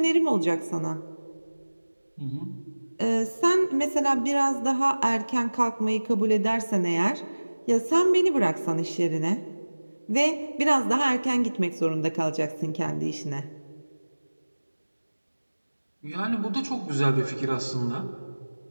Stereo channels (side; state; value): both; inverted; correlation -1.00